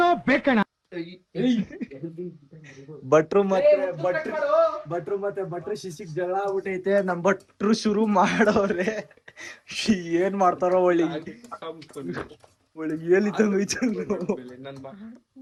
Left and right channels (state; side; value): identical; both; correlation 1.00